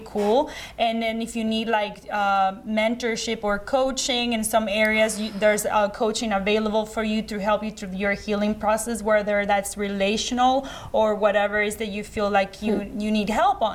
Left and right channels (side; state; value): both; identical; correlation 1.00